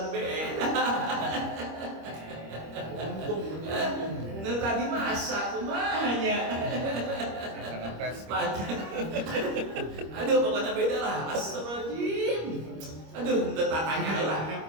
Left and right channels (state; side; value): late; left; 25 ms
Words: beda. Nah tadi masak kumanya. Aduh pokoknya beda lah. Astagfirullahaladzim. Aduh udah tatanya lah.